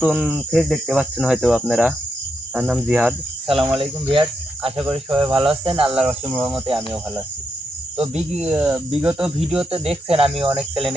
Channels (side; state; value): both; normal; correlation 0.82